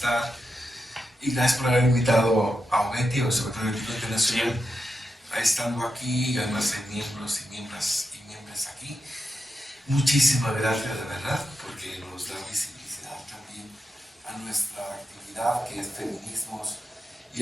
Y gracias por haber invitado a OMETI, o Observatorio Ético Internacional, a estando aquí, y además hay miembros y miembros aquí. Muchísimas gracias, de verdad, porque nos da visibilidad también a nuestra actividad, que es feminismos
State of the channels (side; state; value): both; normal; correlation 0.87